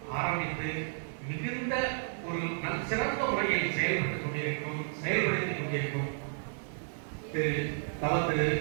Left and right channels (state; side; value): silent; left; 56 dB below the other